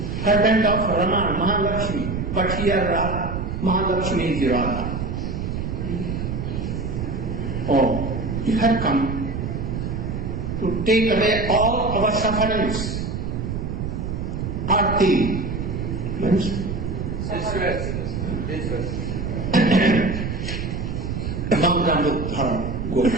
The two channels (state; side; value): noise; right; rumble, 3 dB below the sound